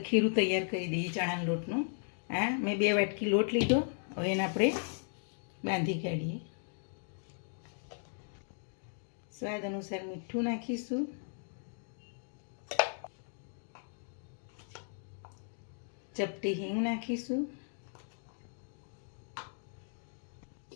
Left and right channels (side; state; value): right; silent; digital silence